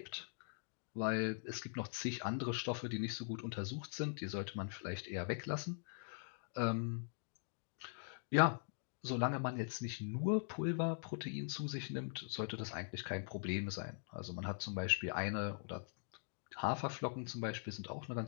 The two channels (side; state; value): right; silent; digital silence